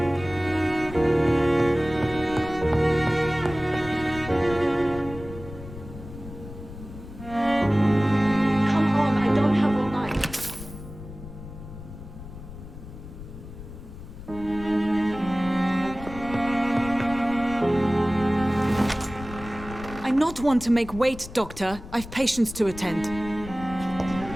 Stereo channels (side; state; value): left; noise; rumble, 13 dB below the sound